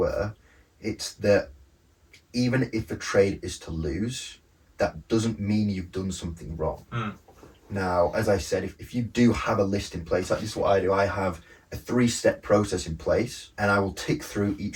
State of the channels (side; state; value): both; identical; correlation 1.00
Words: it's that even if a trade is to lose, that doesn't mean you've done something wrong. Now, as I said, if you do have a list in place, like this is what I do, I have a 3-step process in place, and I will tick through